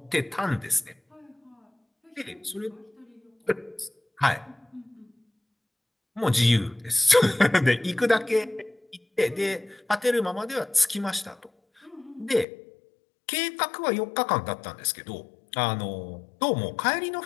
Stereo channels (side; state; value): right; drops out; at 12.5 s